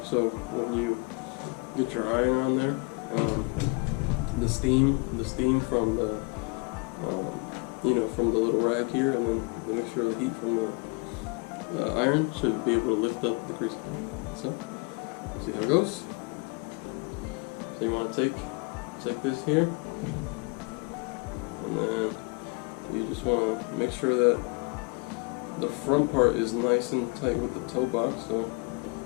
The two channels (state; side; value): quieter; right; 29.8 dB